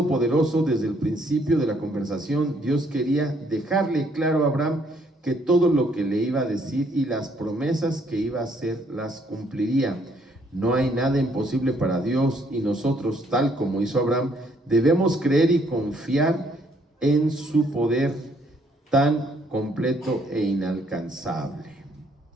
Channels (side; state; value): both; normal; correlation 0.68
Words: desde el principio de la conversación. Dios quería dejarle claro a Abraham que todo lo que le iba a decir y las promesas que iba a hacer las cumpliría. No hay nada imposible para Dios y nosotros, tal como hizo Abraham, debemos creer y confiar en su poder tan completo e inalcanzable.